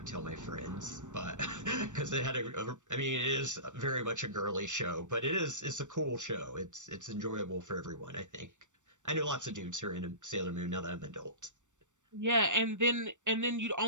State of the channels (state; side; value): late; left; 0.85 ms